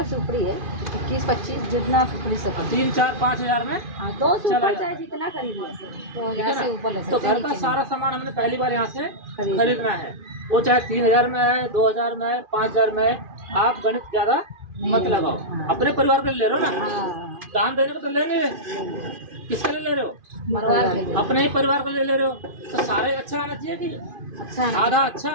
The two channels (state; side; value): late; left; 2.5 ms